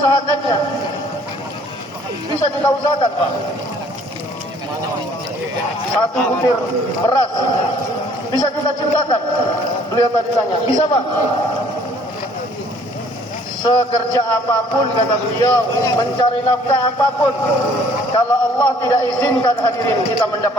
Bisa kita usahakan, Pak. Satu butir beras bisa kita ciptakan. Beliau tadi tanya, bisa Pak? Sekerja apapun kata beliau, mencari nafkah apapun, kalau Allah tidak izinkan hadirin kita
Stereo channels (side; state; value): both; normal; correlation 0.58